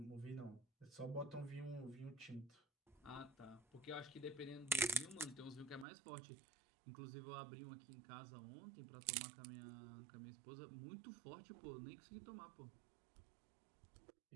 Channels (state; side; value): drops out; left; at 5.9 s